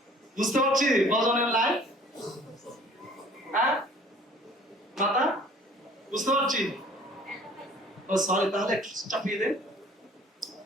বুঝতে পারছি ভজনের লাইন? হ্যাঁ মাতা, বুঝতে পারছি? ও সরি, তাহলে একটু চাপিয়ে দেন।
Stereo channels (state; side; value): normal; both; correlation 0.52